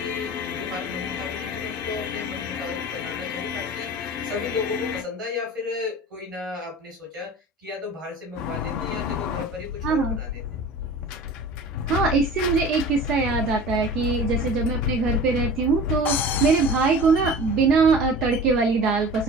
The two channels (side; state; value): both; normal; correlation 0.38